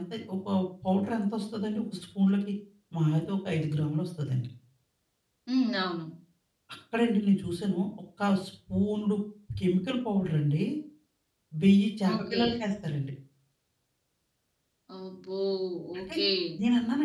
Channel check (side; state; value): both; identical; correlation 1.00